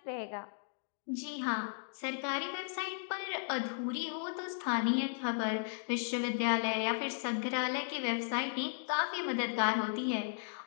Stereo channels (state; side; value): silent; right; digital silence